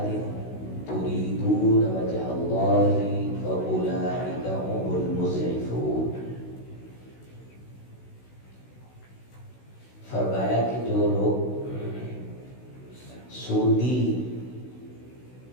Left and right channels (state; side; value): late; right; 16 ms